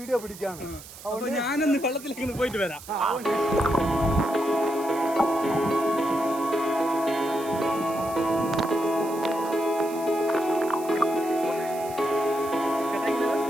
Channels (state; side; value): noise; right; hiss, 16 dB below the sound